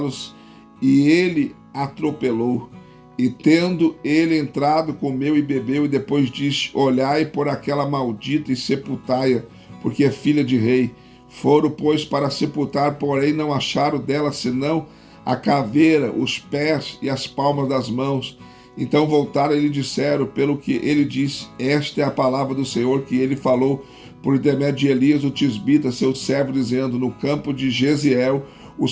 e ele atropelou. E tendo ele entrado, comeu e bebeu, e depois disse: olhai por aquela maldita e sepultai-a, porque é filha de rei. Foram, pois, para sepultar, porém não acharam dela senão a caveira, os pés e as palmas das mãos. Então voltaram e lhe disseram, pelo que ele disse: esta é a palavra do Senhor que ele falou por intermédio de Elias, o tisbita, seu servo, dizendo: no campo de Jeziel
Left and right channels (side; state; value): both; identical; correlation 1.00